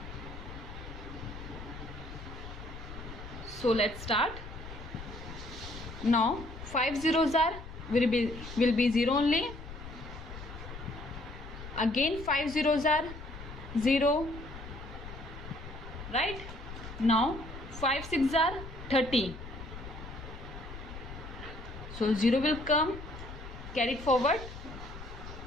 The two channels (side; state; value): left; noise; rumble, 12 dB below the sound